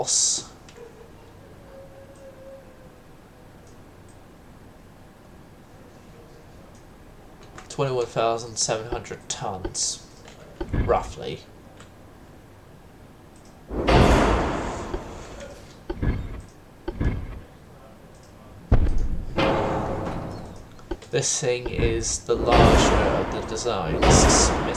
$21,700 tons, roughly. This thing is the larger of the designs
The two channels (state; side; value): identical; both; correlation 1.00